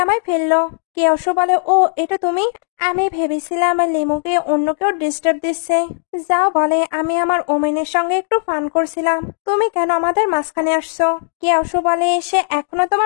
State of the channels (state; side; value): silent; right; digital silence